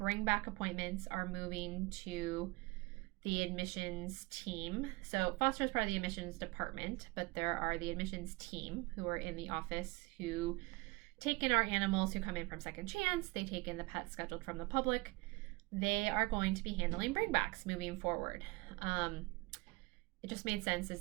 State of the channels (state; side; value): quieter; left; 24.3 dB